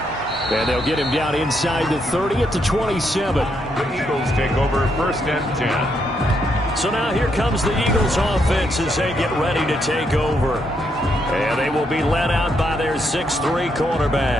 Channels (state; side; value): normal; both; correlation 0.77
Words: And they'll get him down inside the 30 at the 27. The Eagles take over first and 10. So now here comes the Eagles offense as they get ready to take over. And they will be led out by their 6'3"